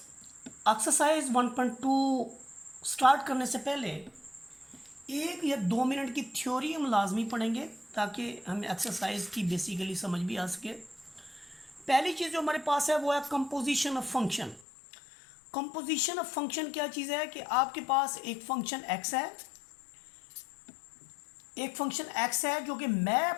Exercise 1.2 start करने से पहले 1 या 2 मिनट की थ्योरी हम लाजमी पढ़ेंगे ताकि हमें एक्सरसाइज की बेसिकली समझ भी आ सके। पहली चीज़ जो हमारे पास है वो है composition of function. Composition of function क्या चीज़ है कि आपके पास एक फंक्शन एक्स है, जो कि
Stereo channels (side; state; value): right; drops out; at 14.7 s